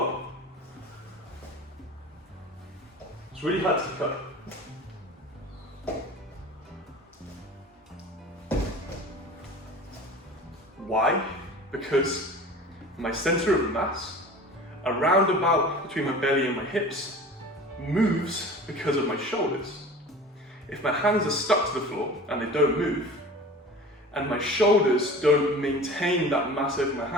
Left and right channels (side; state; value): both; normal; correlation 0.39